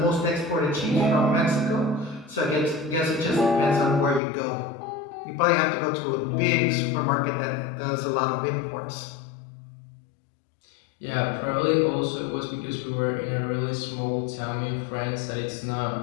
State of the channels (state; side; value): drops out; right; at 4.2 s